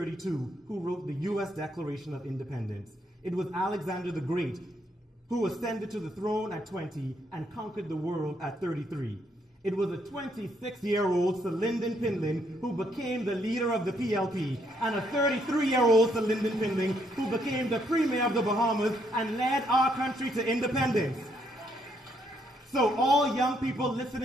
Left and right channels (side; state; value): both; normal; correlation 0.73